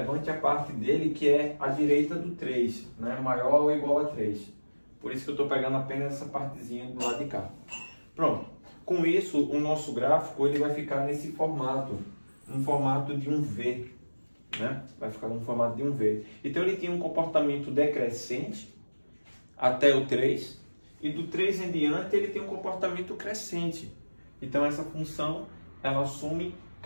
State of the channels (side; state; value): both; inverted; correlation -1.00